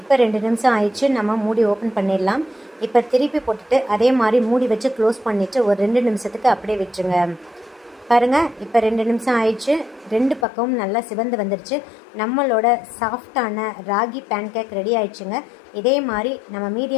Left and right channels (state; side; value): drops out; right; at 10.5 s